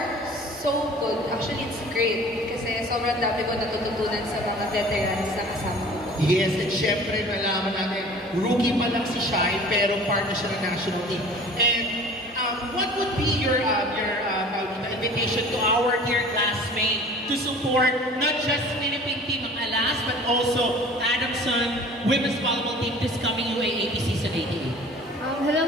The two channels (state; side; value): normal; both; correlation 0.45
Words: so good. Actually, it's great kasi sobrang dami ko natututunan sa mga veterans na kasama ko. Yes, and syempre nalaman natin, rookie pa lang si Shai pero part na siya ng national team. And what would be your invitation to our dear classmates to support not just Philippine team ng Alas but also Adamson Women's Volleyball team this coming UAAP season 88?